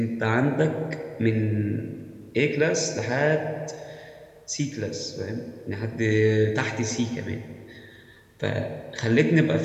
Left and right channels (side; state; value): both; identical; correlation 1.00